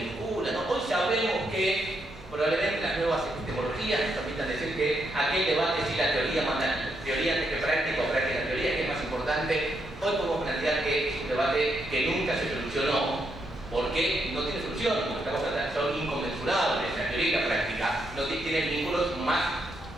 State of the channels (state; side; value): normal; both; correlation 0.79